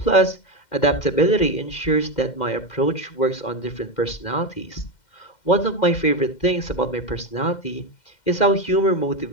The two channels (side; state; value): right; late; 2.1 ms